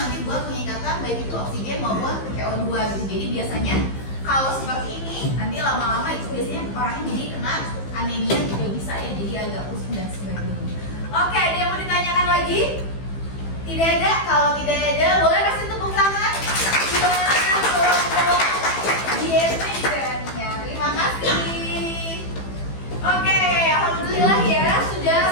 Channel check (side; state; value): right; late; 15 ms